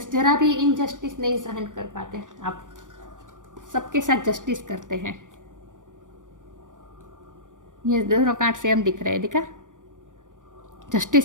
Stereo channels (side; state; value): left; late; 0.87 ms